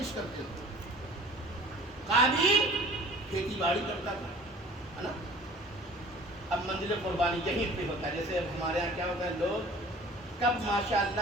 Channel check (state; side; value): normal; both; correlation 0.47